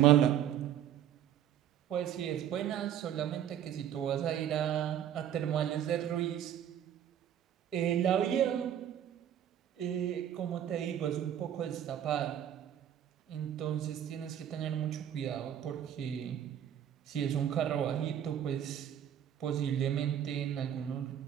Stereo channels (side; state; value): left; quieter; 10.3 dB